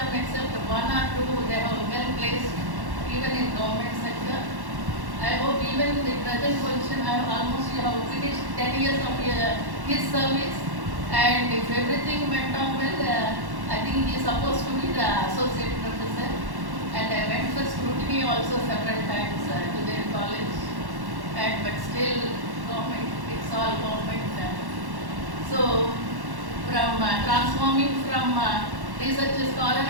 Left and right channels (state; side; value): late; left; 1.1 ms